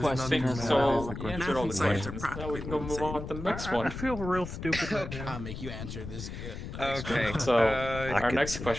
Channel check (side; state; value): left; noise; rumble, 8 dB below the sound